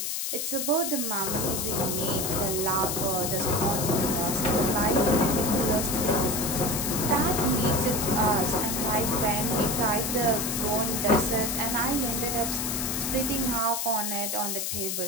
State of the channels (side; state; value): left; noise; hiss, 1 dB below the sound